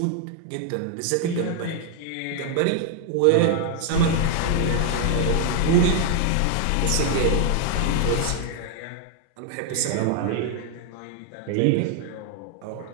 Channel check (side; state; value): both; different; correlation 0.00